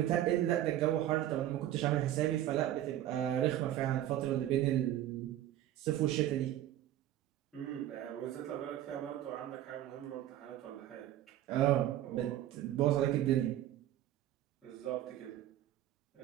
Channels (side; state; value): left; quieter; 12.9 dB